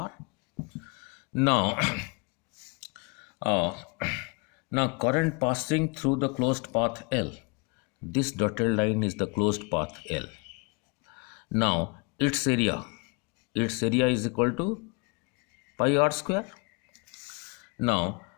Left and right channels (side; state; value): right; quieter; 30.4 dB